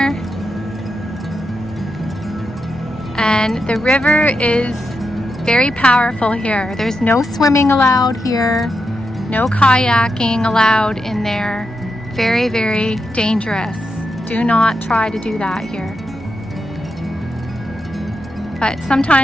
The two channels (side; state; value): both; normal; correlation 0.86